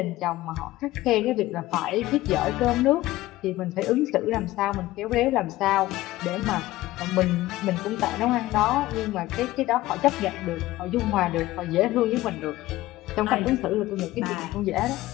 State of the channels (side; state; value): right; quieter; 17.0 dB